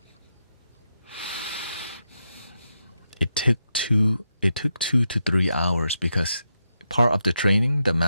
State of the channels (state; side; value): inverted; both; correlation -0.84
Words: it took 2 to 3 hours because part of the training, the